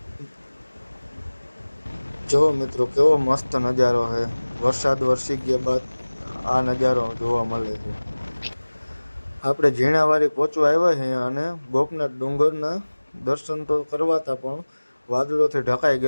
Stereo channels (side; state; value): both; inverted; correlation -1.00